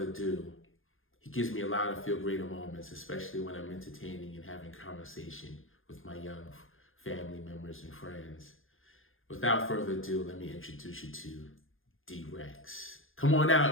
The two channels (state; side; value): late; right; 0.59 ms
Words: ado, he gives me a lot of Feel Greater moments, especially when I'm entertaining and having conversation with my young family members and friends. Without further ado, let me introduce you to D-Rex. Come on